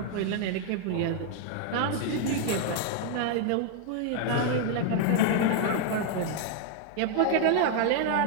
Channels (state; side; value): different; both; correlation 0.00